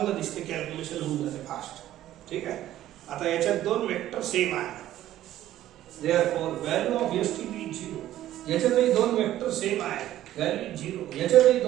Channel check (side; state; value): left; quieter; 13.3 dB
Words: दिसते, कॅल्क्युलेशन होऊन जाते फास्ट. ठीक आहे. आता याच्यात दोन वेक्टर सेम आहे. Therefore value of STP 0. याच्यातही दोन वेक्टर सेम आहे, व्हॅल्यू 0. याच्यातही